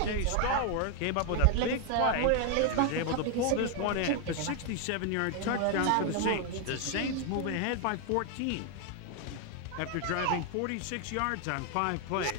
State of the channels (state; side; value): different; both; correlation 0.01